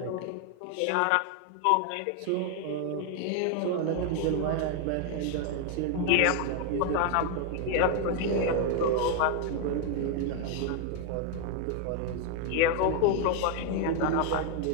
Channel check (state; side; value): different; both; correlation 0.01